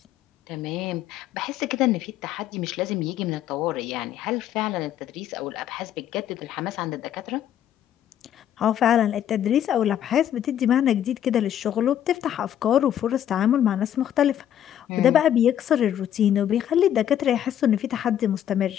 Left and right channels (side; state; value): right; quieter; 10.5 dB